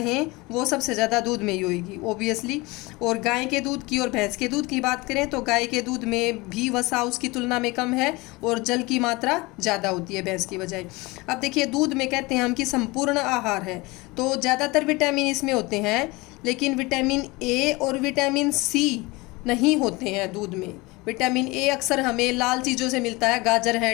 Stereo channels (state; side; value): quieter; right; 23.3 dB